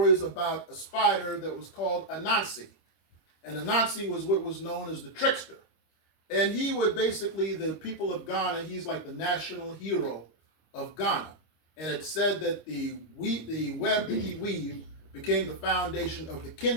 about a spider that was called Anansi. And Anansi was what was known as the trickster. And he would basically, the people of Ghana, he's like the national hero of Ghana. And it said that the web that he weaved became the foundation of the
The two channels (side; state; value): right; late; 25 ms